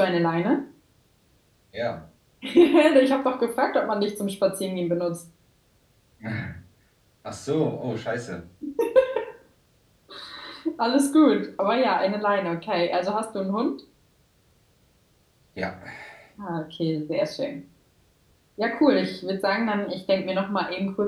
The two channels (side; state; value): both; identical; correlation 1.00